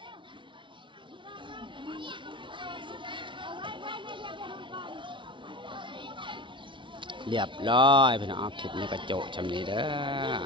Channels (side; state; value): left; late; 0.24 ms